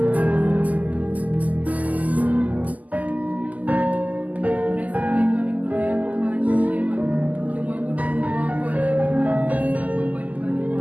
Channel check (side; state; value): left; late; 0.077 ms